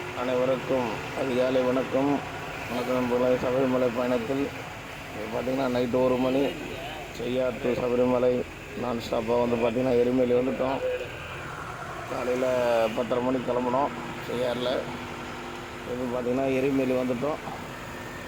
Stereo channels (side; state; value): both; identical; correlation 1.00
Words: அனைவருக்கும் அதிகாலை வணக்கம். வணக்கம் நண்பர்களே. சபரிமலை பயணத்தில் பார்த்திங்கன்னா நைட்டு 1 மணி செய்யார் டு சபரிமலை நான் ஸ்டாப்பாக வந்து பார்த்திங்கன்னா எருமேலி வந்துவிட்டோம். காலையில் 10:30 மணிக்கு கிளம்புனோம் செய்யாரில். இப்போ பார்த்திங்கன்னா எருமேலி வந்துவிட்டோம்.